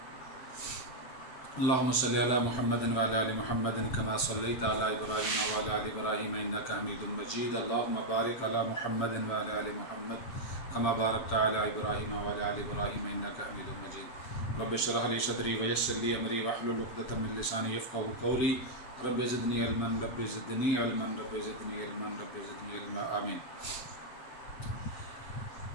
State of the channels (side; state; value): right; late; 7.8 ms